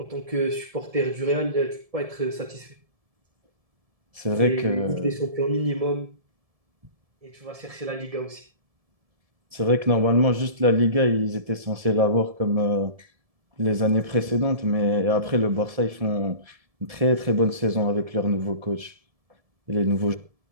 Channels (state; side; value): late; left; 1.7 ms